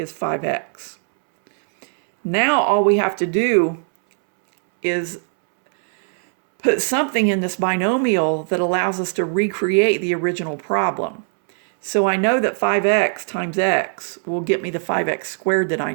5x. Now all we have to do is put something in this binomial that allows us to recreate the original problem. So I know that 5x times x will get me the 5x squared that I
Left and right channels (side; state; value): left; silent; 66 dB below the other